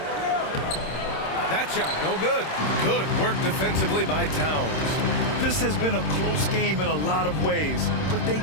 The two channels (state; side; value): late; right; 26 ms